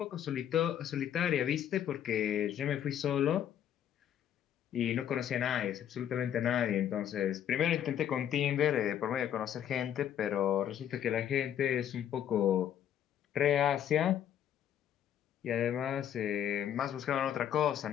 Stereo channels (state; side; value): quieter; right; 10.1 dB